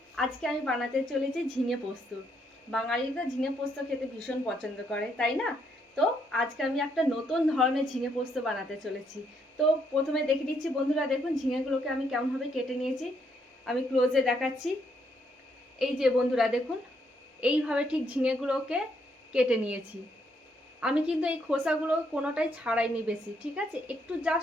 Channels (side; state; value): both; normal; correlation 0.73